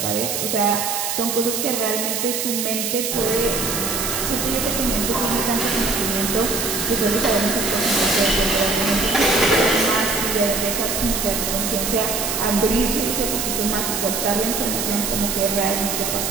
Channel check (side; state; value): right; noise; hiss, 1 dB below the sound